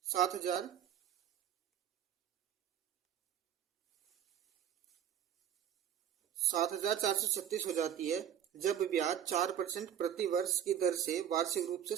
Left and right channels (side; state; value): left; quieter; 9.6 dB